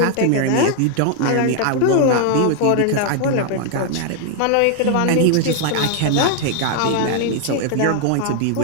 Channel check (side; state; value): both; different; correlation 0.00